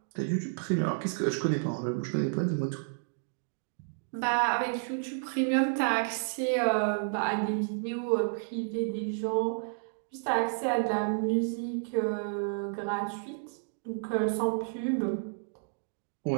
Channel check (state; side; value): silent; left; digital silence